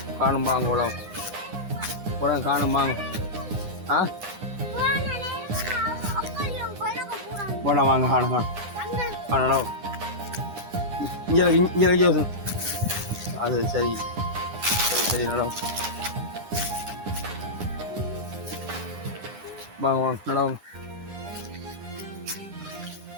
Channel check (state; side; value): late; left; 9.8 ms